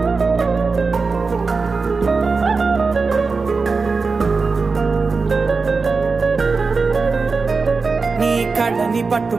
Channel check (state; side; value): quieter; left; 4.4 dB